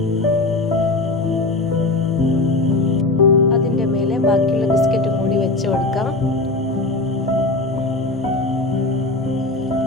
അതിൻ്റെ മേലെ ബാക്കിയുള്ള ബിസ്ക്കറ്റും കൂടി വെച്ച് കൊടുക്കാം.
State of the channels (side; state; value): right; quieter; 3.1 dB